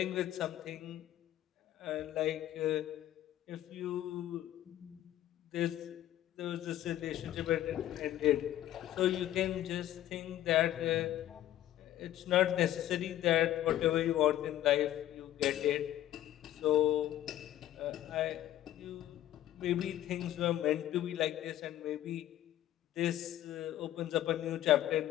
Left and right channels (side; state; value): right; quieter; 13.0 dB